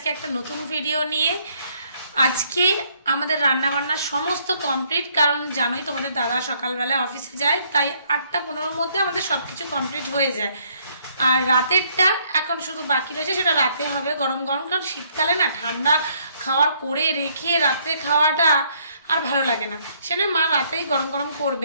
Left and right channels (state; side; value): inverted; both; correlation -0.67